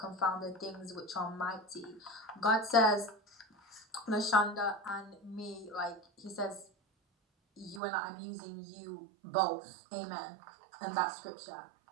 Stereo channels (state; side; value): drops out; left; at 7.8 s